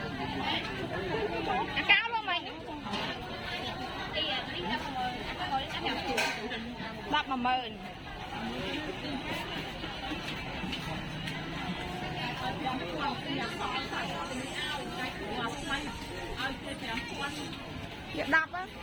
cao luôn mày đập mà mờn đập á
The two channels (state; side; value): identical; both; correlation 1.00